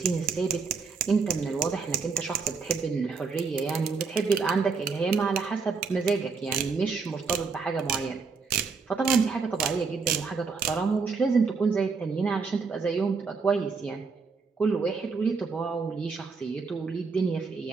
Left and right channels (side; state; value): left; quieter; 4.9 dB